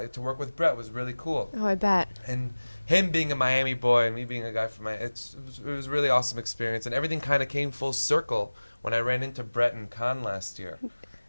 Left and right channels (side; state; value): both; inverted; correlation -1.00